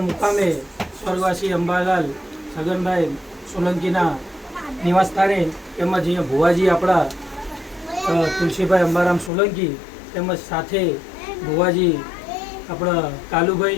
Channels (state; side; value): drops out; right; at 9.3 s